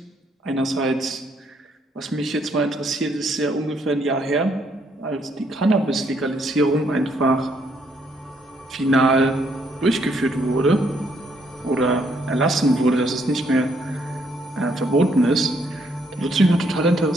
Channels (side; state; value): both; normal; correlation 0.71